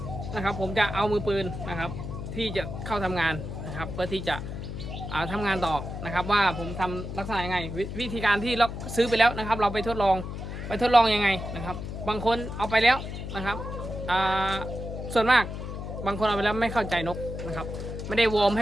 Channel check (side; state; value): left; noise; hum, 7 dB below the sound